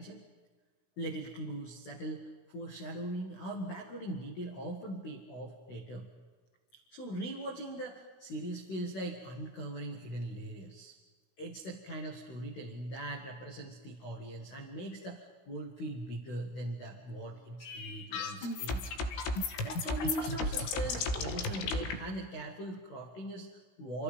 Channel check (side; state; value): right; late; 16 ms